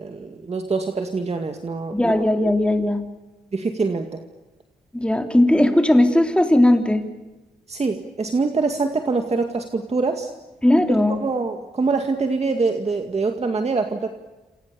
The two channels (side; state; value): both; normal; correlation 0.87